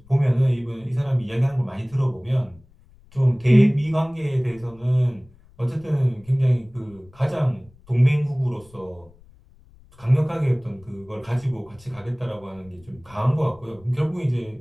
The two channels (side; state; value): left; noise; rumble, 27 dB below the sound